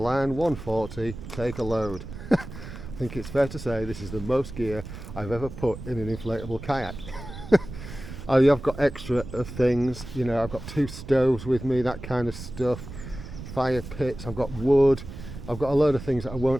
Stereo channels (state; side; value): noise; right; rumble, 11 dB below the sound